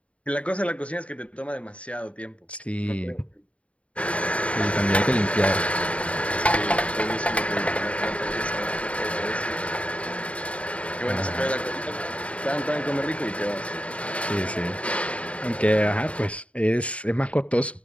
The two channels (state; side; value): late; right; 0.064 ms